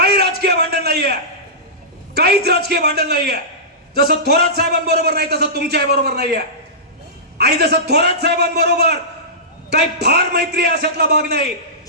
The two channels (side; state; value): both; normal; correlation -0.19